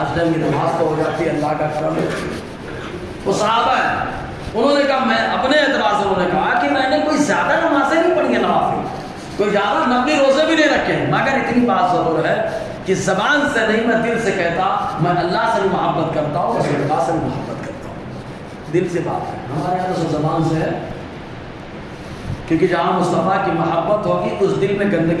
ٹائم کی نماز تو ہو جاتی ہے، اللہ کا کرم ہے۔ وہ صحابہ ہیں، انہوں نے کہا، میں اپنے اعتبار سے انہوں نے کہا کہ میں نے کوئی زیادہ نمازیں نہیں پڑھی ہیں، نوافل کوئی زیادہ نفلی روزے بھی نہیں رکھے ہیں، مگر اتنی بات ضرور ہے کہ زبان سے نہیں، میں دل سے کہتا، میں اللہ سے بھی محبت کرتا ہوں، رسول اللہ سے بھی محبت کرتا ہوں، دل سے بات ہے۔ ہمارے یہاں تو زبان سے ہے، کیونکہ جہاں مصطفیٰ کی محبت ہوگی اس دل میں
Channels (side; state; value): both; identical; correlation 1.00